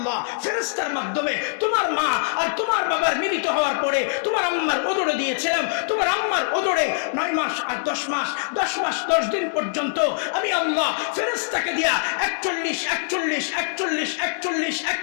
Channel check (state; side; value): silent; right; digital silence